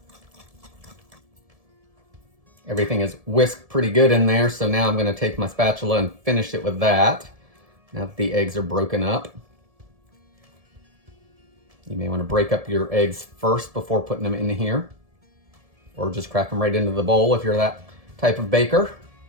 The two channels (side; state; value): left; late; 1.7 ms